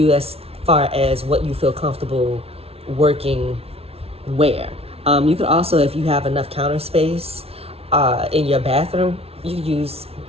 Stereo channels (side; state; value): left; late; 0.29 ms